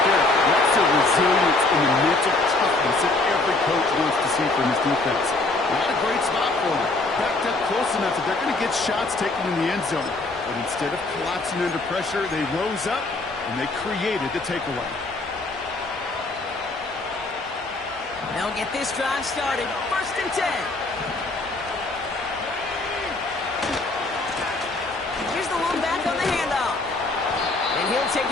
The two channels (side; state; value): right; quieter; 3.2 dB